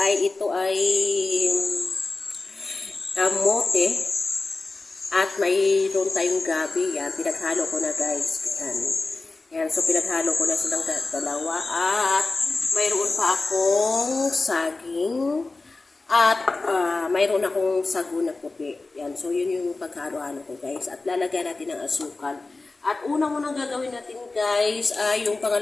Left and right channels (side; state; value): right; quieter; 3.5 dB